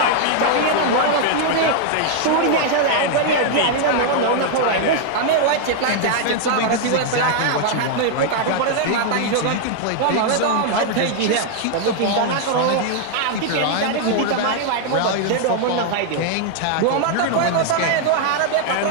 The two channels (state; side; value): different; both; correlation 0.00